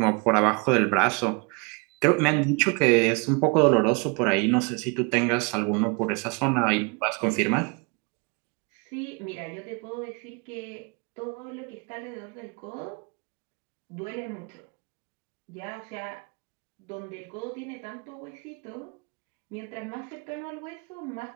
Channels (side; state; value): left; quieter; 31.5 dB